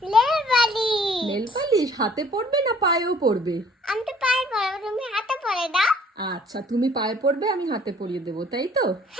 Nail polish. নেল পালিশ হাতে পরবে না পায়েও পরবে? আমি তো পায়ে পরবো, তুমি হাতে পরে দাও। আচ্ছা, তুমি পায়ে পরবে, আমি হাতে পরিয়ে দেবো, তাই তো?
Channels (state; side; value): normal; both; correlation 0.56